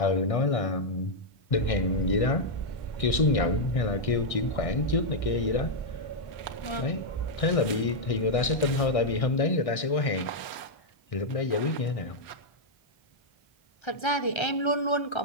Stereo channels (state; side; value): late; right; 1.6 ms